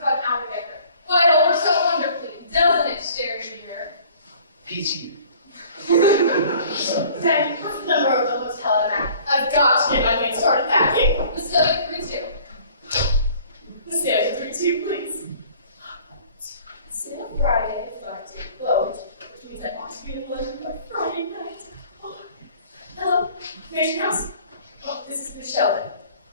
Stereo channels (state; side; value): inverted; both; correlation -0.51